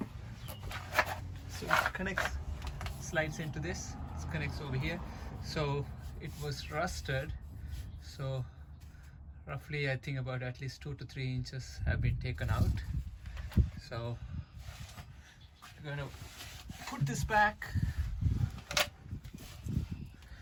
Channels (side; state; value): both; identical; correlation 1.00